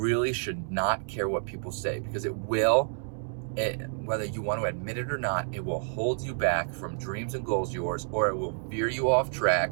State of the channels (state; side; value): silent; left; 58 dB below the other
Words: should not care what people say, because whether you want to admit it or not, it will hold you back from dreams and goals of yours, or it will veer you off